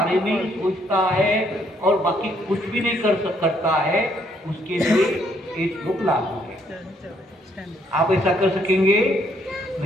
में सोचता है और बाकी कुछ भी नहीं करता है, उसके लिए ये श्लोक लागू है। आप ऐसा कर सकेंगे?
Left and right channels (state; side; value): normal; both; correlation 0.69